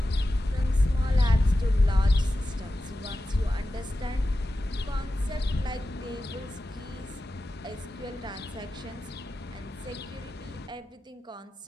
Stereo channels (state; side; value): normal; both; correlation 0.93